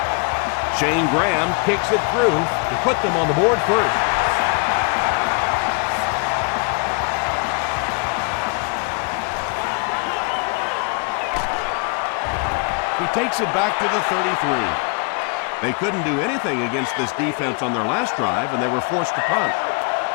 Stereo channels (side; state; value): right; quieter; 35.6 dB